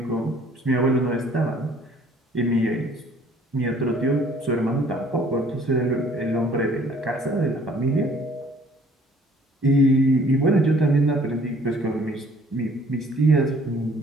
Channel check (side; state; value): both; normal; correlation 0.57